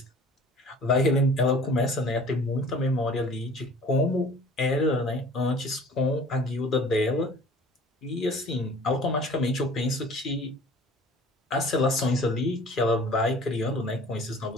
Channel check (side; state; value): both; normal; correlation 0.47